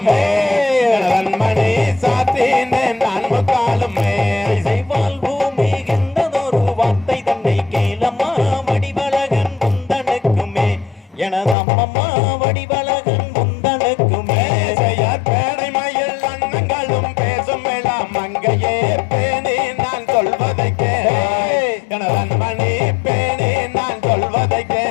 மணி சாத்தேனே நான் முக்காலுமே செய்வால் பூமி எந்ததொரு வார்த்தை தன்னை கேளம்மா வடிவழகன் முந்தனுக்குமே எனது அம்மம்மா வடிவழகன் முந்தனுக்குமே செய்யார் பேடை மயில் அண்ணங்களும் பேசும் எல்லாம் மங்கையே பேணி நான் சொல்வதை கேளன் மணி பேணி நான் சொல்வதை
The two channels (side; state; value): right; drops out; at 11.6 s